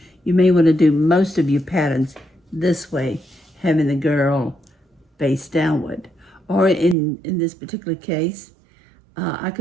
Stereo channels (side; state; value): left; drops out; at 7.0 s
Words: you may want to do most of your patterns this way, having the girl face downward. Or in this particular case, I